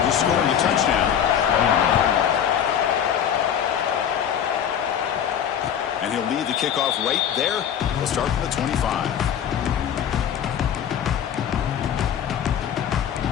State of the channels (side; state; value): right; quieter; 9.0 dB